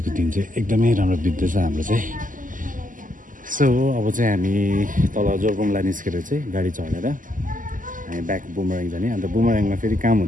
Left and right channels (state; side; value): late; left; 0.38 ms